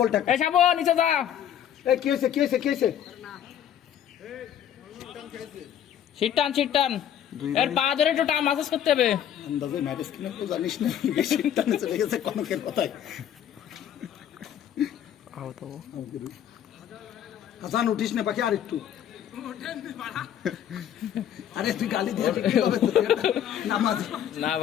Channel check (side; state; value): right; quieter; 10.1 dB